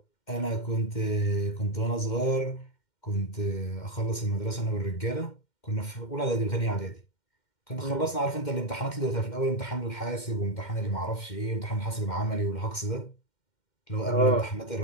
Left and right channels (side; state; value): right; late; 2.1 ms